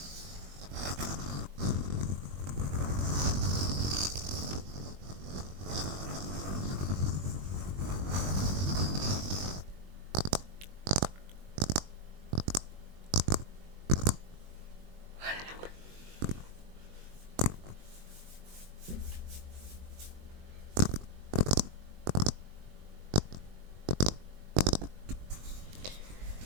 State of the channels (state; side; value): late; left; 21 ms